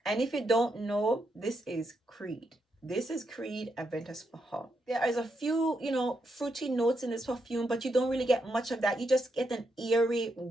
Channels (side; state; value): both; normal; correlation 0.81